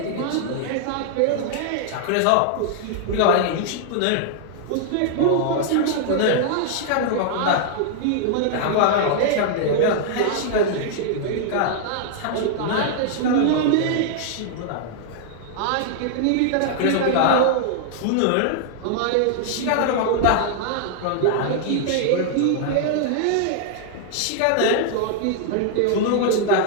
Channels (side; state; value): both; different; correlation -0.01